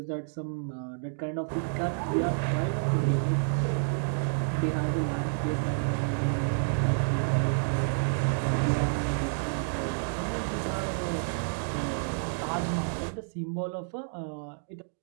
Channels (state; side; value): silent; left; digital silence